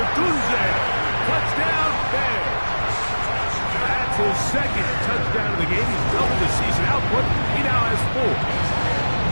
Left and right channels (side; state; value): both; inverted; correlation -1.00